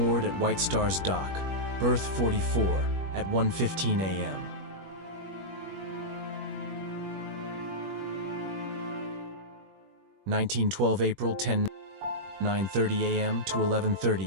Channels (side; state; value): left; late; 21 ms